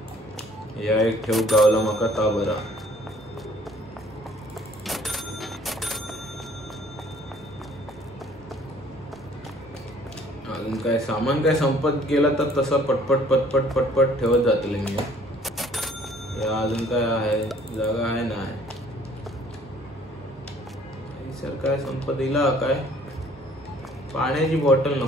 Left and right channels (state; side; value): normal; both; correlation 0.57